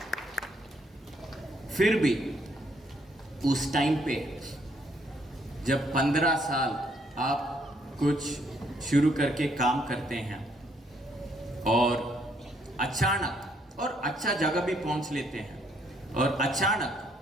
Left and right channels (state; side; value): normal; both; correlation 0.69